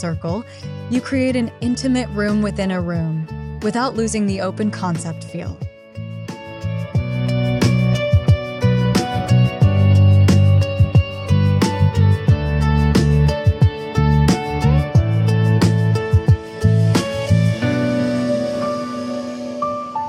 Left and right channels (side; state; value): both; identical; correlation 1.00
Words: you create an intimate room within a room, without losing the open concept feel.